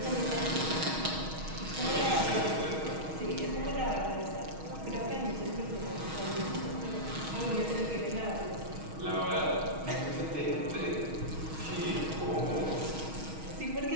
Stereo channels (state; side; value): late; left; 6.3 ms